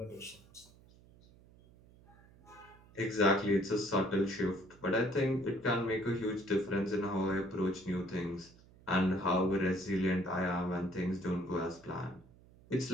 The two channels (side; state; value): right; noise; hum, 25 dB below the sound